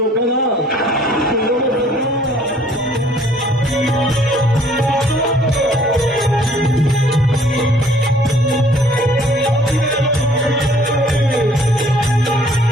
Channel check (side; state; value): both; normal; correlation 0.58